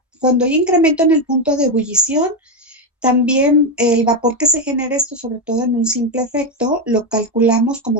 cuando hay incremento en el punto de ebullición, también el vapor que se genera, esto sobre todo en un simple efecto, lo calculamos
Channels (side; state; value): both; normal; correlation 0.09